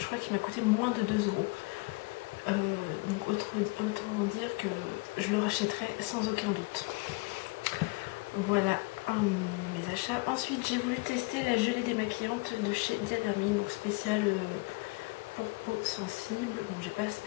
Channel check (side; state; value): right; quieter; 27.4 dB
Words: crois qu'il m'a coûté moins de 2 €. Donc autant dire que je le rachèterai sans aucun doute. Voilà mes achats. Ensuite j'ai voulu tester la gelée démaquillante de chez Diadermine, donc spéciale pour peau sensible. Bon j'ai pas